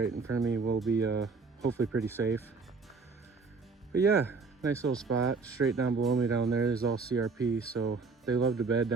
in front of me will be hopefully pretty safe. But yeah, nice little spot straight down below me down there is all CRP, so they love to bed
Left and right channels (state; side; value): quieter; left; 4.4 dB